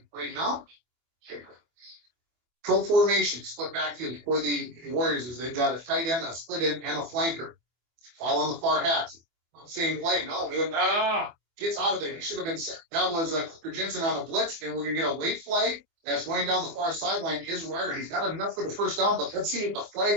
right now. Pro formation, split backfield for the Warriors is they've got a tight end, a split end, and a flanker. All on the far hats. Same play. No, gets out of there. He should have been set. That was Cooper Jensen on a blitz, and we're going to get a late flag that's going down the far sideline. Is Wire. He's got enough for the first down, but let's see what the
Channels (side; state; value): left; late; 24 ms